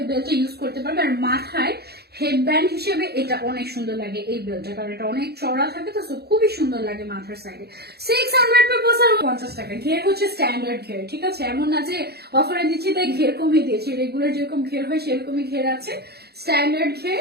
এই বেল্টটা ইউজ করতে পারবে। আর মাথায় হেডব্যান্ড হিসেবে এটা অনেক সুন্দর লাগে এই বেল্টটা, কারণ এটা অনেক চড়া থাকে তো, খুবই সুন্দর লাগে মাথার সাইডে। 600 পে বসার 50 টাকা। ঘের হচ্ছে স্ট্যান্ডার্ড ঘের, ঠিক আছে, এমন না যে অফারে দিচ্ছি তাই ঘের কমিয়ে দিয়েছি। রেগুলার যেরকম ঘের হয় সেরকমই ঘের আছে, স্ট্যান্ডার্ড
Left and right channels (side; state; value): left; late; 0.47 ms